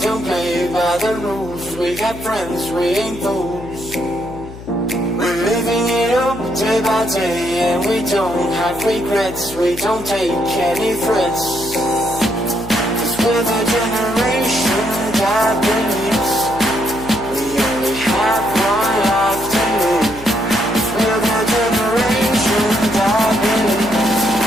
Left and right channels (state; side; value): noise; left; hum, 15 dB below the sound